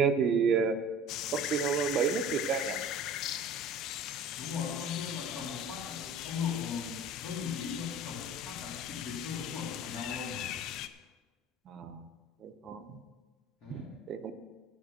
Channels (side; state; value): both; normal; correlation 0.42